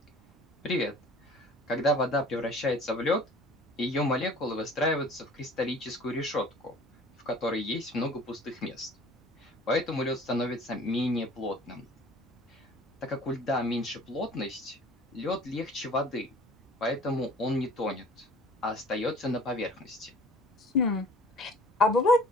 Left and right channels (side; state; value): both; normal; correlation 0.48